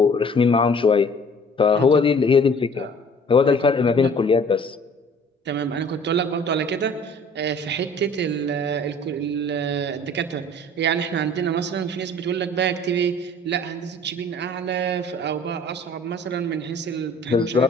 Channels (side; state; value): both; normal; correlation 0.51